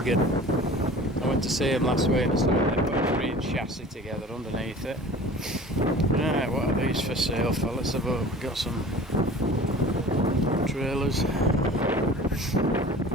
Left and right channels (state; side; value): normal; both; correlation 0.42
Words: I went to see him last week and they put a green chassis together underneath it. Right, what are these for sale for? Let's have a look. We've got some trailers.